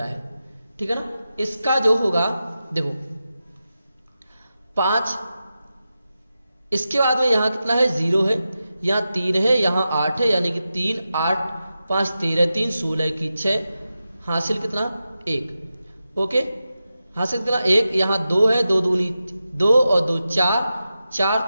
है, ठीक है ना। इसका जो होगा देखो 5, इसके बाद में यहां कितना है 0 है, यहां 3 है, यहां 8 है, यानी कि 3 8 5 13 3 16 की 6 हासिल कितना 1। ओके, हासिल कितना 1, यहां 2 है, 2 दूनी 2 और 2 4 4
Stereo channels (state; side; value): inverted; both; correlation -0.91